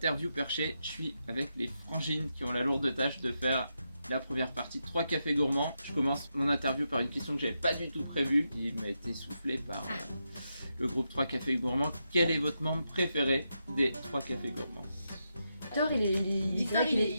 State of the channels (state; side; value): inverted; both; correlation -0.85